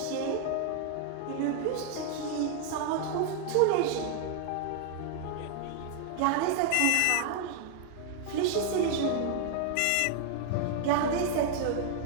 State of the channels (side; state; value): both; different; correlation 0.00